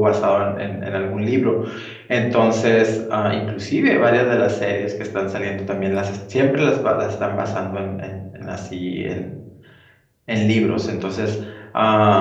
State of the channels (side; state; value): both; identical; correlation 1.00